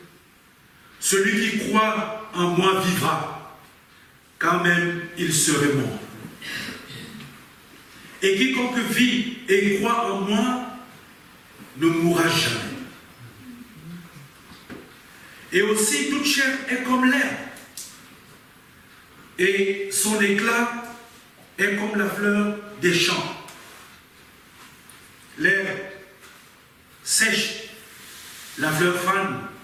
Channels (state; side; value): identical; both; correlation 1.00